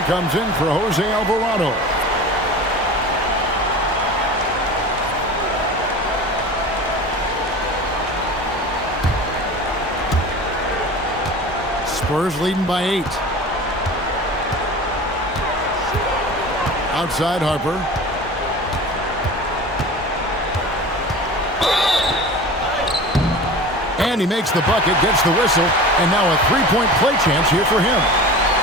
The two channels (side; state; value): both; normal; correlation 0.35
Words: comes in for Jose Alvarado. Spurs leading by 8. Outside Harper. And he makes the bucket, gets the whistle, and now a three-point play chance here for him.